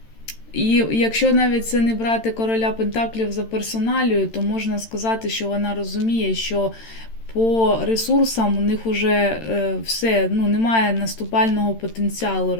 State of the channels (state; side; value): late; right; 13 ms